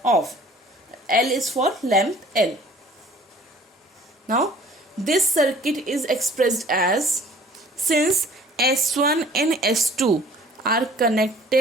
off. L is for lamp L. Now this circuit is expressed as, since S1 and S2 are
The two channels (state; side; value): normal; both; correlation 0.52